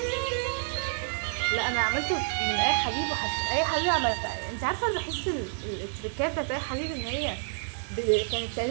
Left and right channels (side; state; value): left; silent; digital silence